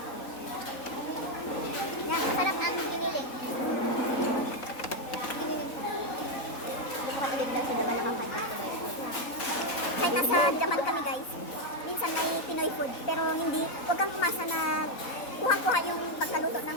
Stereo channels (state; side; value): late; right; 3.8 ms